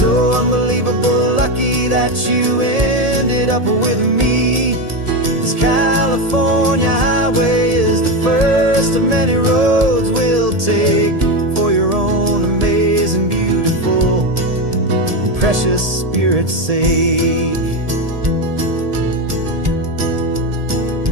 unbelievable lucky that you ended up with me. This California highway is the first of many roads we'll take for your own amazing, beautiful precious Spirit's sake.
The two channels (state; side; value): late; left; 1.7 ms